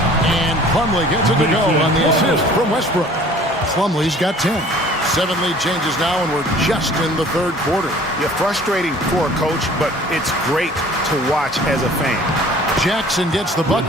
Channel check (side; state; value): both; normal; correlation 0.50